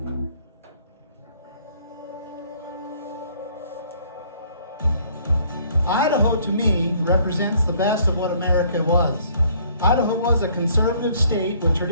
Idaho, to me, represents the best of what America was. Idaho was a conservative state with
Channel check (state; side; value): inverted; both; correlation -0.60